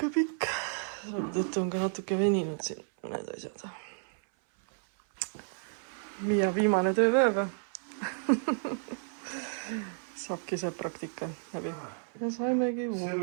pikk. Tõttu on ka natuke veninud siin mõned asjad. Miia viimane tööpäeva. Saabki see praktika läbi. Ja saimegi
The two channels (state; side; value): silent; left; 56 dB below the other